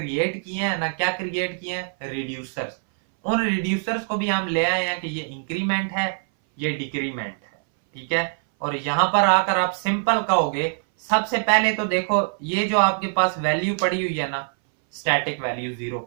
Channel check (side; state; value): left; silent; 60 dB below the other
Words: किए हैं ना, क्या क्रिएट किए हैं, रिड्यूसर्स। उन रिड्यूसर्स को भी हम ले आए हैं कि ये इंक्रीमेंट है, ये डिक्रीमेंट है। ठीक है, और यहां पर आकर आप सिंपल कहोगे, सबसे पहले तो देखो ये जो आपके पास वैल्यू पड़ी हुई है ना, स्टैटिक वैल्यू 0,